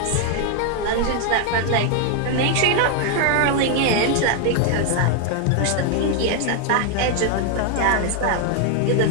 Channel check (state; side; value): different; both; correlation 0.00